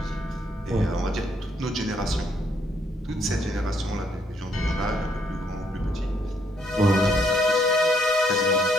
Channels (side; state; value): both; normal; correlation 0.72